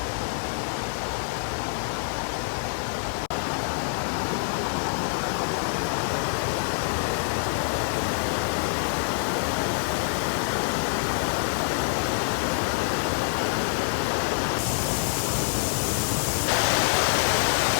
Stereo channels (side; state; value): right; silent; 60 dB below the other